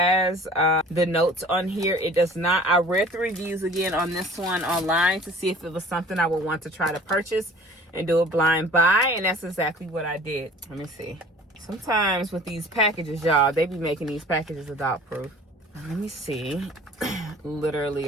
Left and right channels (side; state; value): both; normal; correlation 0.47